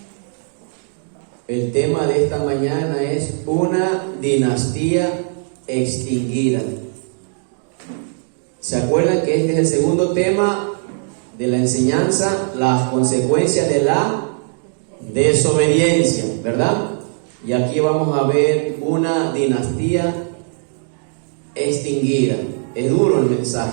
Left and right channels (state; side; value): silent; left; 59 dB below the other